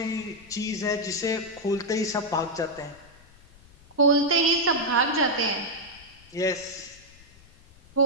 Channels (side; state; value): left; noise; rumble, 25 dB below the sound